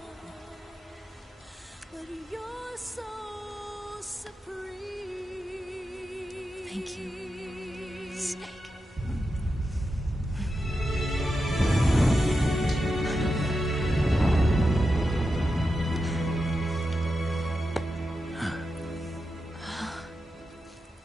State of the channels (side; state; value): both; normal; correlation 0.89